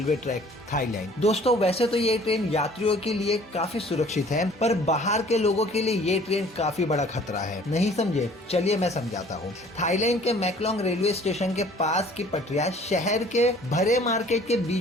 ट्रैक, थाईलैंड। दोस्तों, वैसे तो ये ट्रेन यात्रियों के लिए काफी सुरक्षित है, पर बाहर के लोगों के लिए ये ट्रेन काफी बड़ा खतरा है। नहीं समझे? चलिए मैं समझाता हूँ। थाईलैंड के मैकलोंग रेलवे स्टेशन के पास की पटरियां शहर के भरे मार्केट के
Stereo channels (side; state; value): both; normal; correlation 0.53